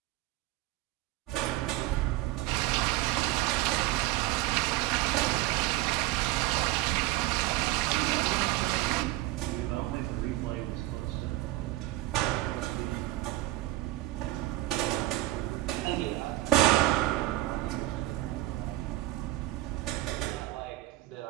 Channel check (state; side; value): quieter; left; 17.3 dB